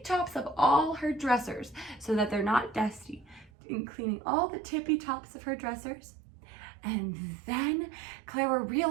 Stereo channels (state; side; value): drops out; left; at 3.5 s